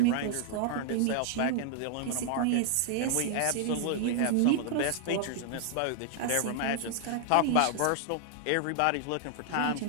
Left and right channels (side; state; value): both; different; correlation 0.00